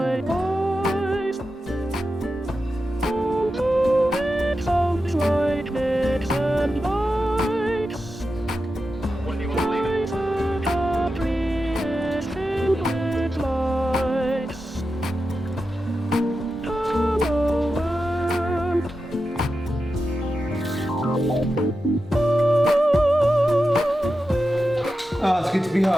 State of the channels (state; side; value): normal; both; correlation 0.90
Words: Oh, it's good to be